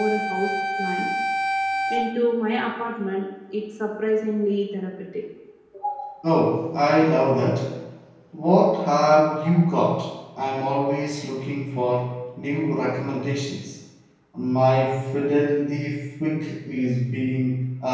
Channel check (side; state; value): both; identical; correlation 1.00